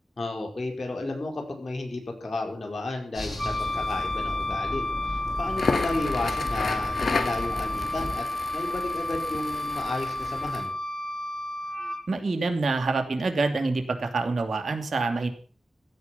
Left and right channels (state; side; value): normal; both; correlation 0.90